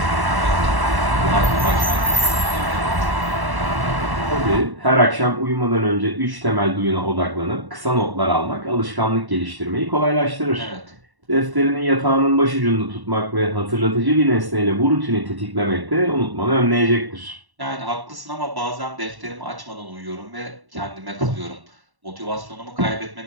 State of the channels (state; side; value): late; left; 1.1 ms